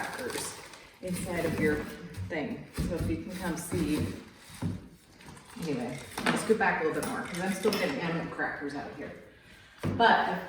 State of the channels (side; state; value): both; identical; correlation 1.00